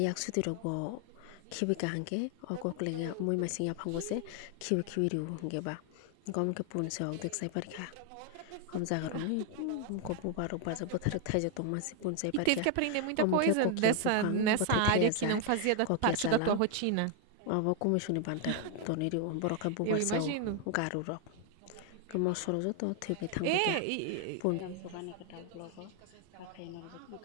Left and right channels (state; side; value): different; both; correlation 0.00